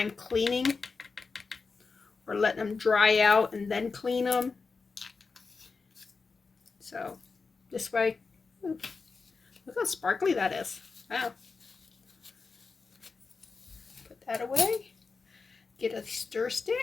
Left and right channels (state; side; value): quieter; right; 4.5 dB